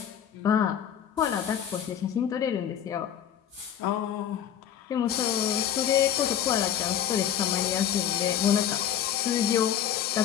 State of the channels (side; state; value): right; quieter; 9.8 dB